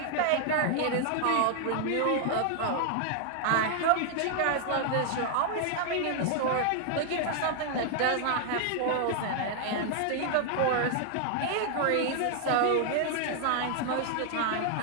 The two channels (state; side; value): different; both; correlation 0.00